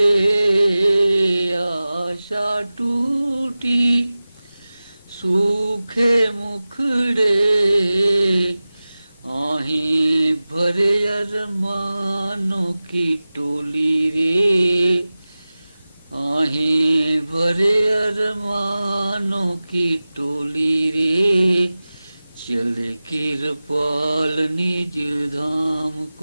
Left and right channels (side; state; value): both; inverted; correlation -0.97